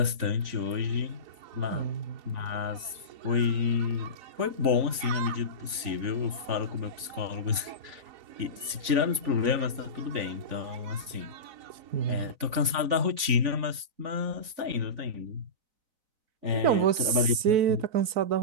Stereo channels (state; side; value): late; left; 3.5 ms